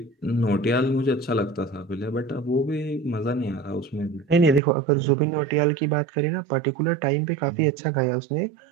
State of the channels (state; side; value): drops out; left; at 4.6 s